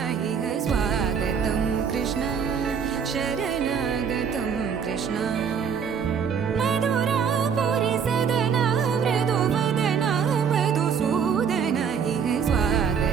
इह स्वागतं कृष्ण शरणागतं कृष्ण मधुरापुरि सदन मृदुवदन मधुसूदन इह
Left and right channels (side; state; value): left; quieter; 6.9 dB